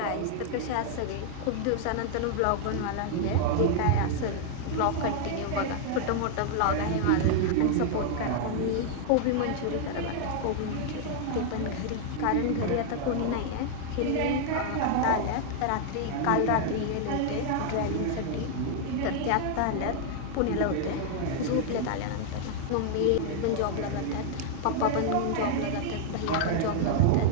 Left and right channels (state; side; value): different; both; correlation 0.00